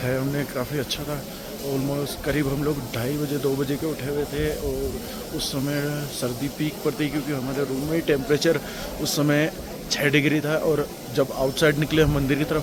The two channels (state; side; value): identical; both; correlation 1.00